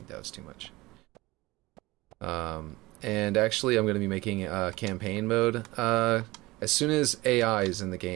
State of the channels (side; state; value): left; quieter; 20.5 dB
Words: that was too much. And actually, I'm going to be making a campaign mode. As soon as AI is in the